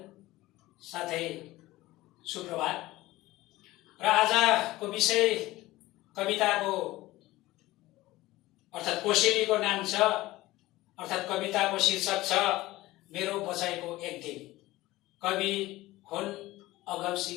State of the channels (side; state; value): right; quieter; 18.0 dB